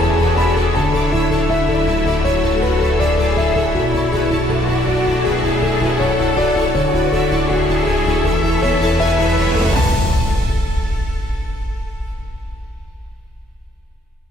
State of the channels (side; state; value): both; normal; correlation 0.69